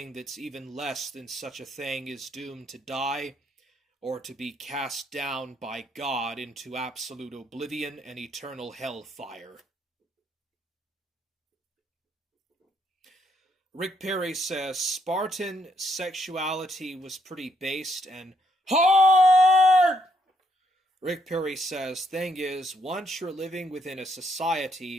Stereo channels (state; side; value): normal; both; correlation 0.73